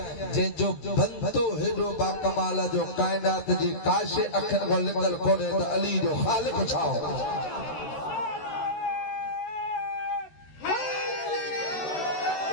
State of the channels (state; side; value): late; right; 13 ms